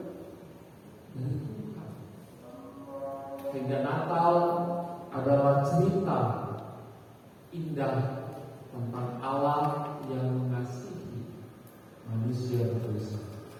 Dari Tuhan. Sehingga Natal adalah cerita indah tentang Allah yang mengasihi manusia berdosa.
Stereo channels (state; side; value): identical; both; correlation 1.00